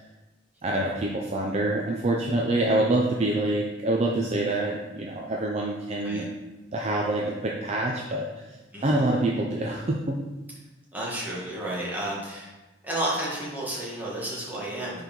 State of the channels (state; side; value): normal; both; correlation 0.46